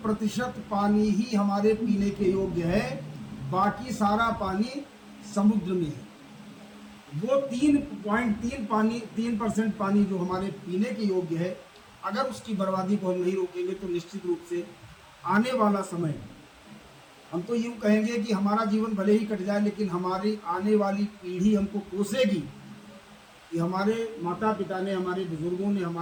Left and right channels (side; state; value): both; identical; correlation 1.00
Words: पानी ही हमारे पीने के योग्य है, बाकी सारा पानी समुद्र में है। वो 3% पानी जो हमारे पीने के योग्य है, अगर उसकी बर्बादी को हम नहीं रोकेंगे तो निश्चित रूप से आने वाला समय, हम तो यूँ कहेंगे कि हमारा जीवन भले ही कट जाए, लेकिन हमारी आने वाली पीढ़ी हमको कोसेगी कि हमारे माता पिता ने, हमारे बुजुर्गों ने